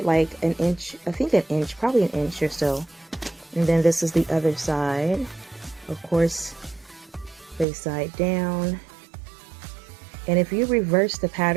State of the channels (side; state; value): left; drops out; at 7.7 s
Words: like an inch, I think an inch, probably an inch or so. And then this is the other side. Of course, face side down. And if you reverse the